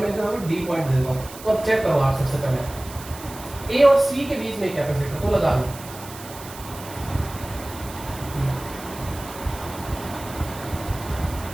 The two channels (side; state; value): right; noise; hiss, 15 dB below the sound